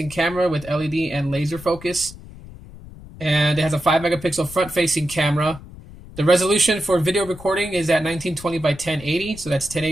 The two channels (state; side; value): noise; left; rumble, 17 dB below the sound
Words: camera with LED and laser focus. And it has a 5 megapixel front-facing camera. The resolution for video recording is at 1920 by 1080, so that's